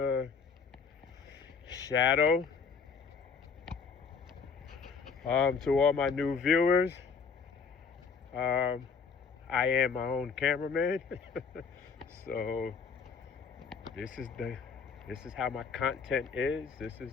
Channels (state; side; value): quieter; right; 5.5 dB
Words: shadow. To all my new viewers, I am my own cameraman. So this is how my content is. This is